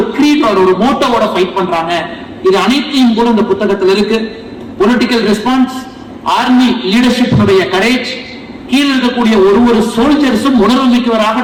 கிரீட் ஒரு மோட்டோவோட ஃபைட் பண்றாங்க, இது அனைத்தையும் கூட இந்த புத்தகத்தில் இருக்கு. Political response, army leadership courage, கீழ் இருக்கக்கூடிய ஒரு சோல்ஜர்ஸும் உணர்வு மிக்கவராக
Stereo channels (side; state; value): both; identical; correlation 1.00